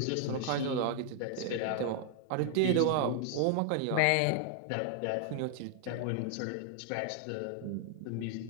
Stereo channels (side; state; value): both; different; correlation 0.00